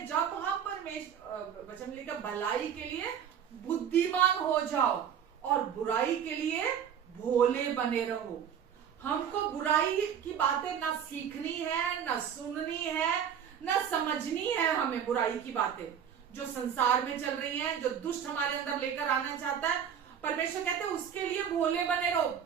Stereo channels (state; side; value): quieter; left; 8.4 dB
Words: जब हम परमेश्वर वचन लिखा, भलाई के लिए बुद्धिमान हो जाओ और बुराई के लिए भोले बने रहो। हमको बुराई की बातें ना सीखनी है, ना सुननी है, ना समझनी है। हमें बुराई की बातें जो संसार में चल रही हैं, जो दुष्ट हमारे अंदर लेकर आना चाहता है, परमेश्वर कहते हैं उसके लिए भोले बने रहो।